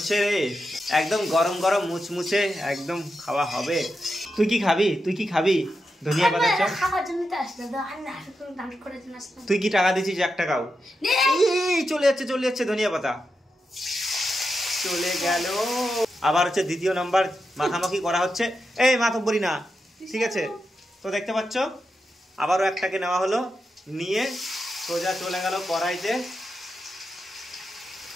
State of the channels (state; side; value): normal; both; correlation 0.88